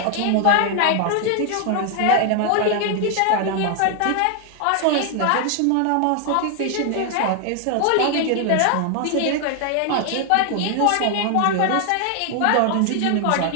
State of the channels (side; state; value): both; different; correlation 0.00